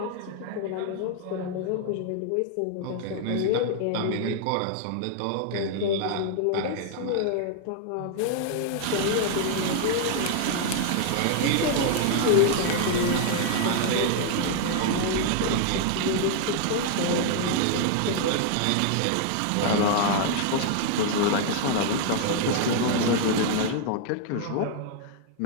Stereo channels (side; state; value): both; different; correlation 0.00